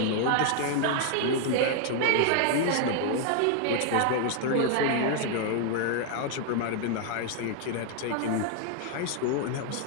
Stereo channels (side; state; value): both; different; correlation 0.00